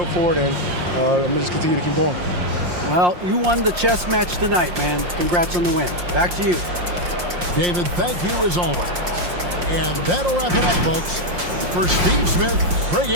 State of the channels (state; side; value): late; left; 5.6 ms